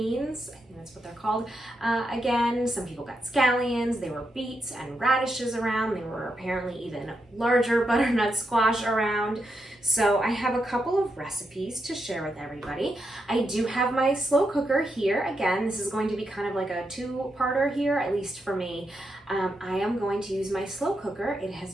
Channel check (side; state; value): both; normal; correlation 0.84